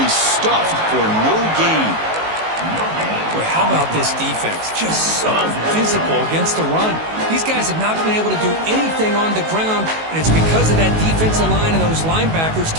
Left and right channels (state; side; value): late; left; 19 ms